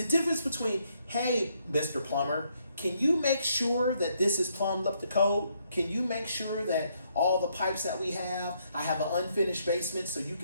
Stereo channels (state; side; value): inverted; both; correlation -0.73